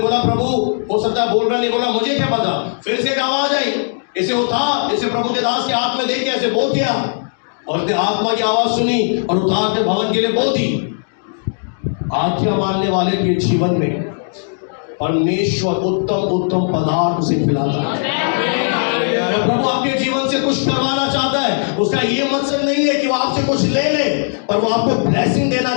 प्रभु हो सकता है बोल रहा नहीं, बोला मुझे क्या पता। फिर से एक आवाज आई, इसे उठा, इसे प्रभु के दास के हाथ में दे के ऐसे बो किया और इसने आत्मा की आवाज सुनी और उतार कर भवन के लिए बो दी। आज्ञा मानने वाले के जीवन में परमेश्वर उत्तम उत्तम पदार्थ उसे खिलाता है। अगर प्रभु आपके जीवन से कुछ करवाना चाहता है, उसका ये मकसद नहीं है कि वो आपसे कुछ ले ले, पर वो आपको ब्लेसिंग देना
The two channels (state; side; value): silent; right; digital silence